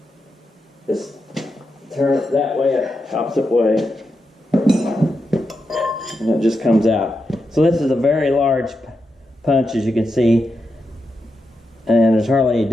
Just turn it that way, opposite way. And it just comes out. So this is a very large punch, as you can see. And there's hardly any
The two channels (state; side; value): normal; both; correlation 0.86